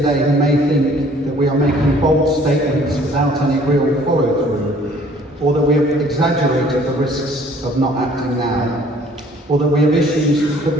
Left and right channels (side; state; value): both; normal; correlation 0.56